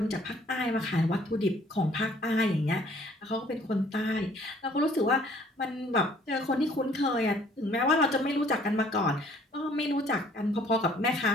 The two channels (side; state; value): both; normal; correlation 0.58